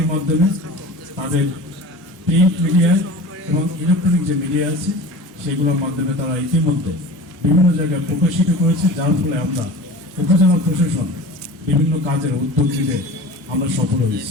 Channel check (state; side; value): normal; both; correlation 0.37